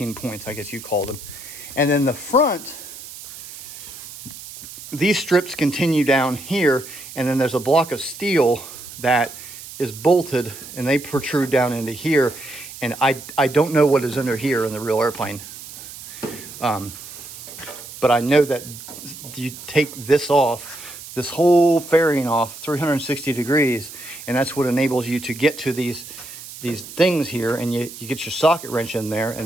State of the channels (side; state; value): right; noise; hiss, 14 dB below the sound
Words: points, I guess you call them. And then the front, these strips continue down here, and then there's a block of steel that is bolted, and they protrude down into here. And I don't know what is under here in the real airplane. But I know that you take this off, this whole fairing off 360 degrees, and that's what enables you to get to these things here, and you get your socket wrench in there,